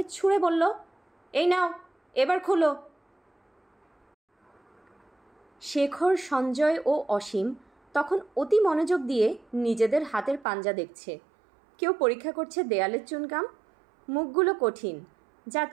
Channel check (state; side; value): drops out; left; at 10.5 s